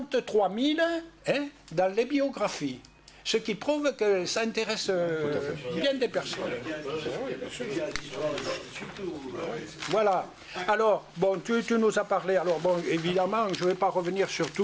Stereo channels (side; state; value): both; identical; correlation 1.00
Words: 000 dans les biographies. Ce qui prouve que ça intéresse bien des personnes. Voilà. Alors, bon, tu nous as parlé. Alors, bon, évidemment, je ne vais pas revenir sur